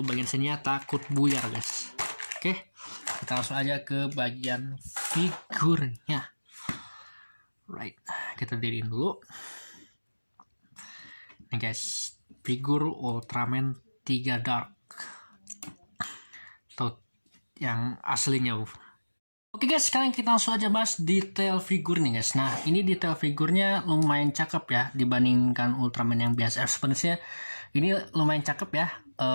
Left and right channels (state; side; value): inverted; both; correlation -1.00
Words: bagian sini ya, takut buyar guys. Oke, kita langsung aja ke bagian figurnya. Right, kita diriin dulu. Nih guys, figur Ultraman 3 Dark. Tuh, yang aslinya. Oke guys, sekarang kita langsung aja bahas detail figur nih guys. Nah, ini detail figurnya lumayan cakep ya dibandingkan Ultraman yang biasa. Sebenarnya ini lumayan cakep ya.